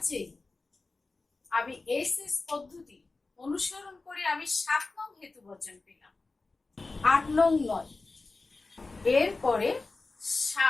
এ আমি এসএস পদ্ধতি অনুসরণ করে আমি 7 নং হেতু বচন পেলাম, 8 নং নয়। এরপরে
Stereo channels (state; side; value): quieter; right; 3.6 dB